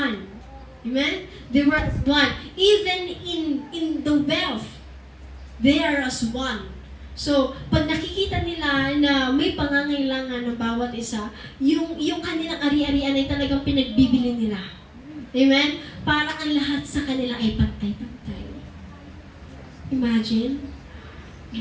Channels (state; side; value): identical; both; correlation 1.00